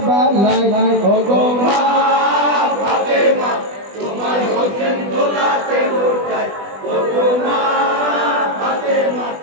ও গো মা ফাতেমা তোমার হোসেন দোলাতে লুটায়, ও গো মা ফাতেমা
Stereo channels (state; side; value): late; left; 20 ms